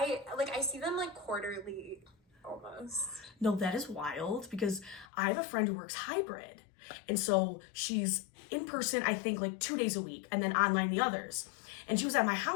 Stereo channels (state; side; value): drops out; right; at 5.1 s